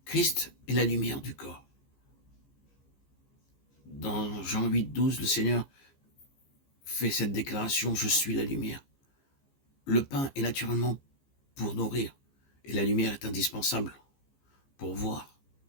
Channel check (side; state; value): right; late; 15 ms